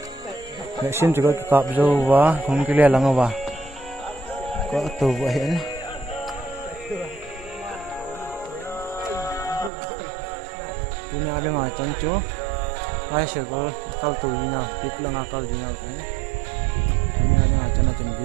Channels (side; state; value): left; drops out; at 9.7 s